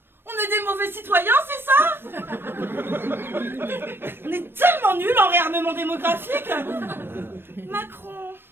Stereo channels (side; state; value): left; late; 0.10 ms